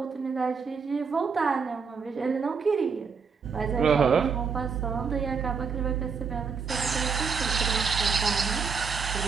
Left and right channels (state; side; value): quieter; left; 5.7 dB